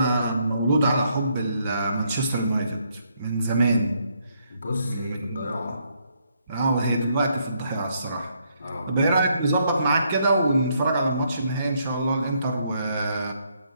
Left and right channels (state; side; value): inverted; both; correlation -0.73